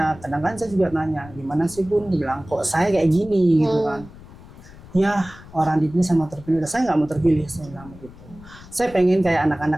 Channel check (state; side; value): noise; left; rumble, 19 dB below the sound